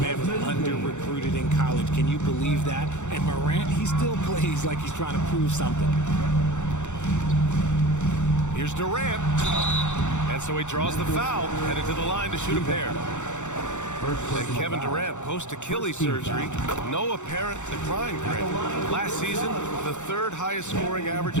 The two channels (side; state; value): right; late; 0.84 ms